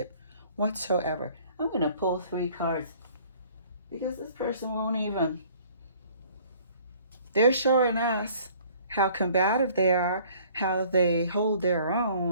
whatsoever. I'm going to pull 3 cards because this person won't even. They're showing us how combative they are, how they hold their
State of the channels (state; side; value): inverted; both; correlation -0.55